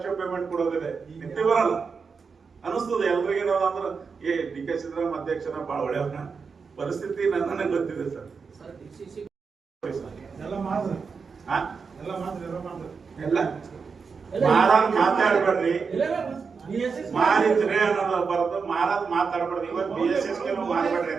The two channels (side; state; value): left; quieter; 5.3 dB